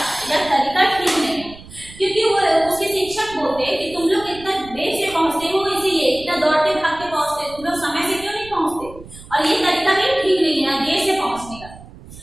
यह तरीका ठीक नहीं है। क्योंकि वो उसके शिक्षक बोलते कि तुम लोग इतना देर से पहुंचते हो, इसीलिए इतना दौड़ते भागते पहुंचते, तुम लोग समय से क्यों नहीं पहुंचते? और ये तरीका भी ठीक नहीं है देर से पहुंचने का।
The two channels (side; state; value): right; noise; rumble, 18 dB below the sound